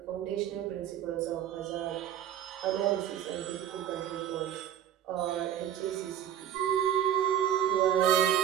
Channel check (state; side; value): quieter; left; 10.6 dB